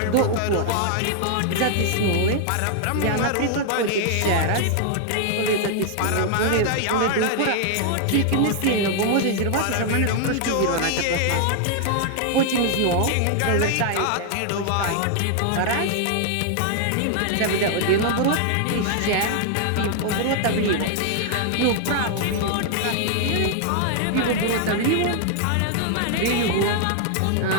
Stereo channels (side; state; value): both; different; correlation 0.00